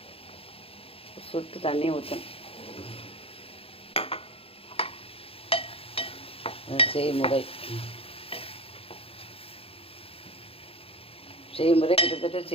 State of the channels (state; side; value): late; right; 0.27 ms